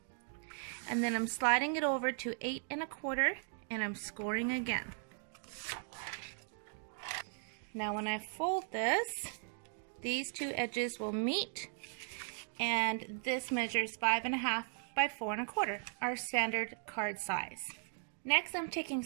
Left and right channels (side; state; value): left; silent; digital silence